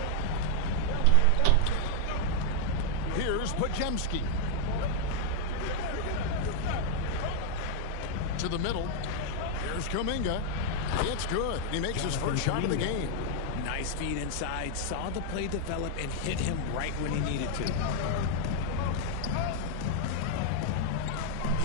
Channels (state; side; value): different; both; correlation 0.00